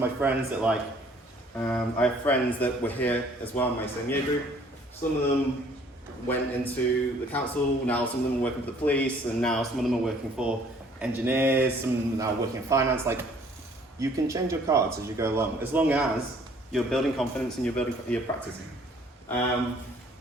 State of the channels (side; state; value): both; normal; correlation 0.58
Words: my friends that I have friends that were here as well in my same year group. Some of them went into the council, now some of them are working for the police, and now some of them are working for engineers, some of them are now working in finance. Like, you can change your cards as you go along, as long as you're building confidence and you're practicing.